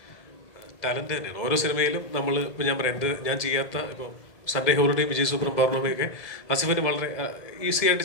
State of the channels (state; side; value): late; right; 1.7 ms